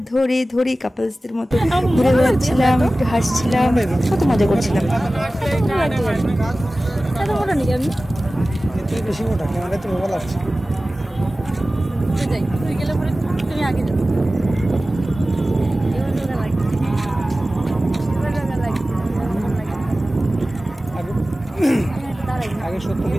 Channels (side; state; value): both; normal; correlation 0.96